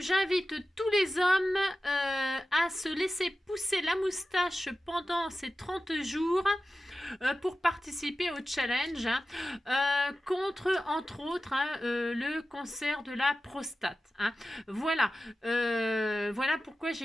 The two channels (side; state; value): both; normal; correlation 0.94